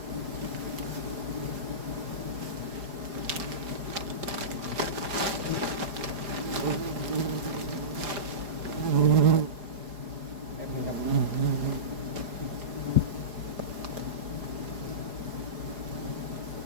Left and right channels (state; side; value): late; left; 4.8 ms